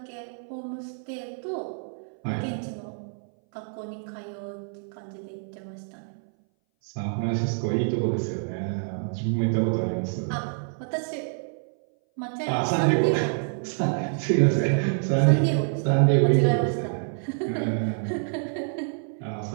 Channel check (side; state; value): left; silent; 59 dB below the other